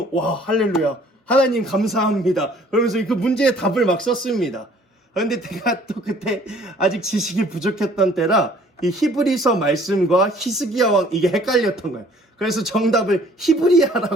할렐루야. 하나님 감사합니다. 그러면서 그 문제의 답을 막 썼습니다. 그런데 제가 또 그때 아직 지식이 부족했던 때라 이 히브리서 말씀과 히스기야 왕 이게 헷갈렸던 거예요. 그래서 정답을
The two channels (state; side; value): normal; both; correlation 0.56